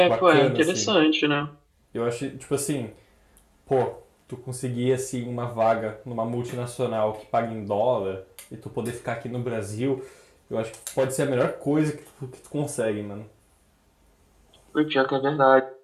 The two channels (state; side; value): identical; both; correlation 1.00